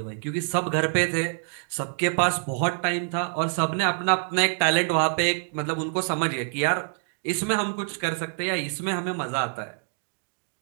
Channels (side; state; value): left; silent; 61 dB below the other